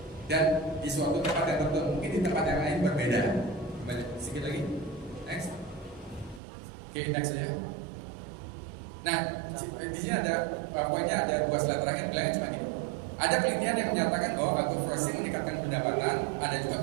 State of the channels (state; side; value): drops out; left; at 6.4 s